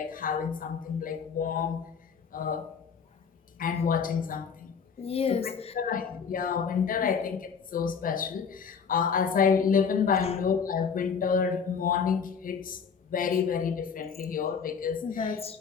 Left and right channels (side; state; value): right; quieter; 6.3 dB